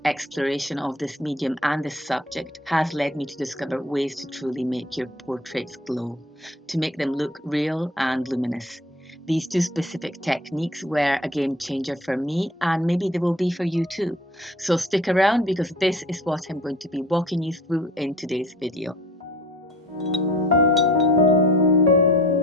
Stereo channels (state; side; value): normal; both; correlation 0.46